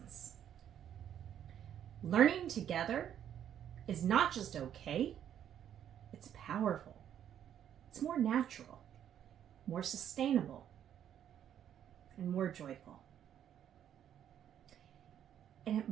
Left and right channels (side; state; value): left; quieter; 9.9 dB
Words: learning together is not just okay, it's powerful. It's more natural, more sustainable, and more joyful. And it